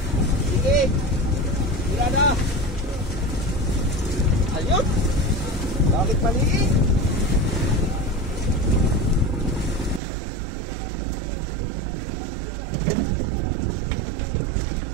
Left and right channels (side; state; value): left; drops out; at 10.0 s